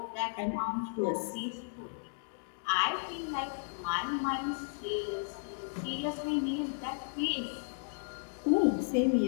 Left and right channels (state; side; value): silent; right; digital silence